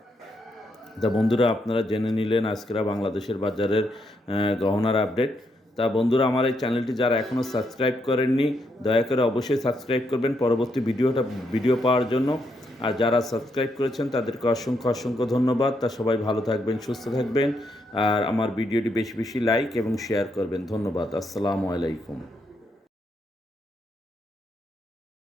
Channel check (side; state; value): both; normal; correlation 0.78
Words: তা বন্ধুরা, আপনারা জেনে নিলেন আজকের বাংলাদেশের বাজারের গহনার আপডেট। তা বন্ধুরা, আমার এই চ্যানেলটি যারা এখনও সাবস্ক্রাইব করেননি, দয়া করে অবশ্যই সাবস্ক্রাইব করবেন পরবর্তী ভিডিও পাওয়ার জন্য। আর যারা সাবস্ক্রাইব করেছেন তাদেরকে অসংখ্য ধন্যবাদ। তা সবাই ভালো থাকবেন, সুস্থ থাকবেন আর আমার ভিডিওটি বেশি বেশি লাইক এবং শেয়ার করবেন। ধন্যবাদ। আসসালামু আলাইকুম।